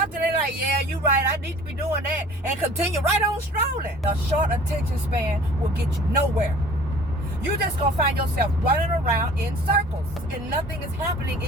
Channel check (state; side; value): normal; both; correlation 0.48